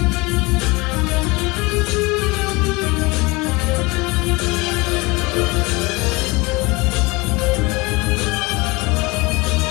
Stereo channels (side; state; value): right; quieter; 24.4 dB